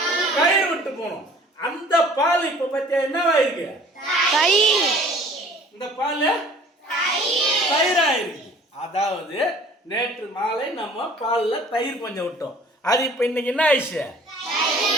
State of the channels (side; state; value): both; normal; correlation 0.50